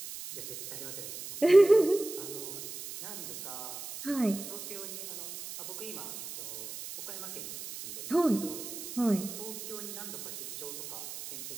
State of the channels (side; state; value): right; noise; hiss, 10 dB below the sound